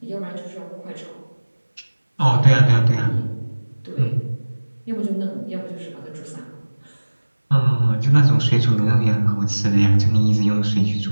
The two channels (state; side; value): inverted; both; correlation -1.00